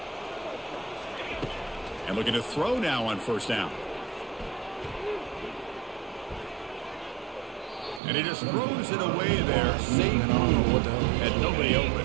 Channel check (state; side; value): drops out; left; at 8.0 s